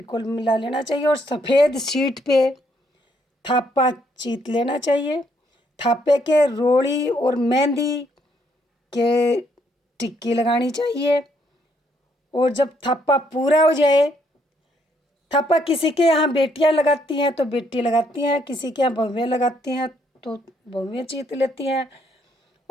मिला लेना चाहिए और सफ़ेद शीट पे थापा चीत लेना चाहिए। थापे के रोड़ी और मेहंदी के टिक्की लगानी चाहिए। और जब थापा पूरा हो जाए, थापा किसी के यहाँ बेटियाँ लगाती हैं तो बेटी लगाती हैं, किसी के यहाँ बहुएँ लगाती हैं तो बहुएँ चीत लेती हैं।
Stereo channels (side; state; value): both; normal; correlation 0.71